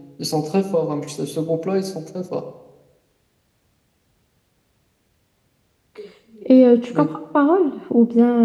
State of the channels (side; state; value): both; identical; correlation 1.00